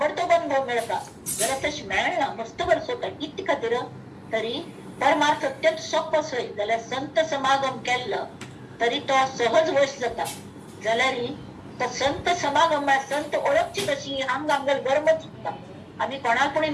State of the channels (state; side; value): identical; both; correlation 1.00